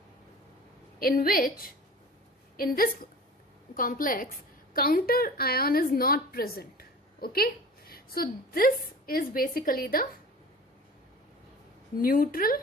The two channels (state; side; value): normal; both; correlation 0.40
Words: in which in this complex counter ion is not present. Okay, so this is basically the neutral